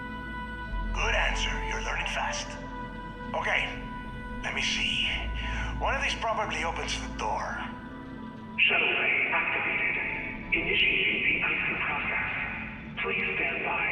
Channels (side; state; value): both; identical; correlation 1.00